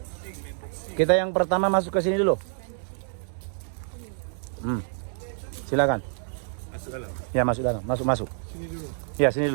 Kita yang pertama masuk ke sini dulu. Silakan. Masuk dalam. Ya, masuk dalam. Masuk. Sini dulu. Ya, sini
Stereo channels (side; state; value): left; silent; digital silence